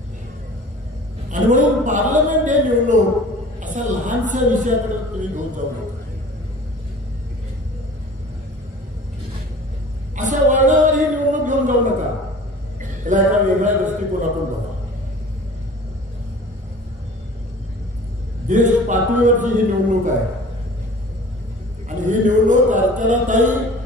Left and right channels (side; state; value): both; normal; correlation 0.44